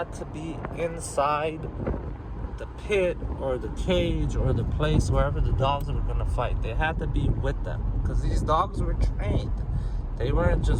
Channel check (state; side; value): identical; both; correlation 1.00